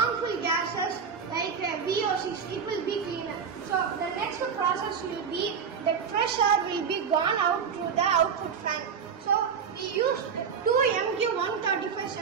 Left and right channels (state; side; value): quieter; left; 6.6 dB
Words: gases like VOCs. It will be cleaner. So the next process will be the fresh air will be gone out through the output fan. So we used two MQ135